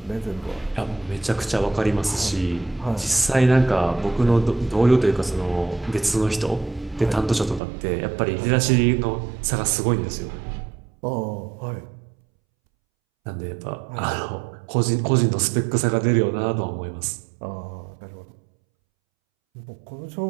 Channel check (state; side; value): drops out; left; at 7.6 s